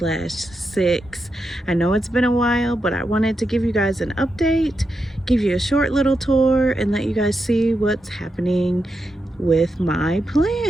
I know it's been a while, but I wanted to give you guys an update, give you a short little tour, and let you guys see what's happening with my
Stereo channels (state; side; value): normal; both; correlation 0.86